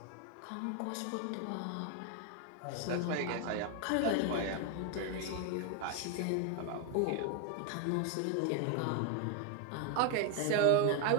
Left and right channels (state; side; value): different; both; correlation 0.01